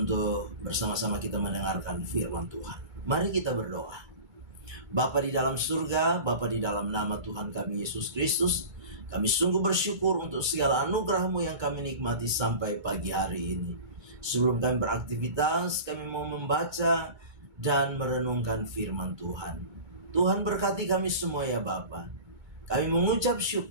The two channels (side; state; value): left; late; 2.2 ms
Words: bersama-sama kita mendengarkan firman Tuhan. Mari kita berdoa. Bapa di dalam surga, Bapa di dalam nama Tuhan kami Yesus Kristus, kami sungguh bersyukur untuk segala anugerah-Mu yang kami nikmati sampai pagi hari ini. Sebelum kami beraktivitas, kami mau membaca dan merenungkan firman Tuhan. Tuhan berkati kami semua ya Bapa. Kami mengucap